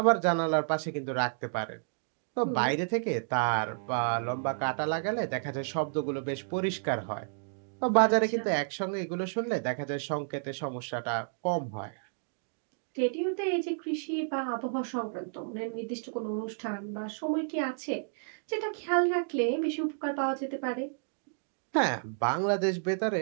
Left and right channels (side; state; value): left; silent; digital silence